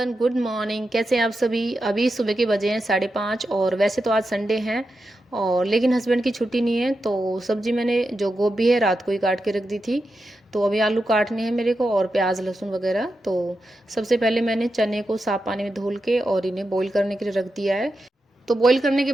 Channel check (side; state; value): both; normal; correlation 0.89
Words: good morning. कैसे हैं आप सभी? अभी सुबह के बजे हैं 5:30 और वैसे तो आज संडे है और लेकिन हस्बैंड की छुट्टी नहीं है। तो सब्जी मैंने जो गोभी है रात को ही काट के रख दी थी। तो अभी आलू काटने हैं मेरे को और प्याज लहसुन वगैरह। तो सबसे पहले मैंने चने को साफ पानी में धुल के और इन्हें बॉईल करने के लिए रख दिया है। तो बॉईल करने के